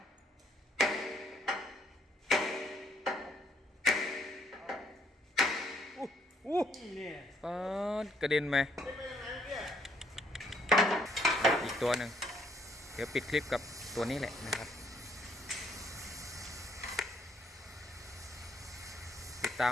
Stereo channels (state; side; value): normal; both; correlation 0.68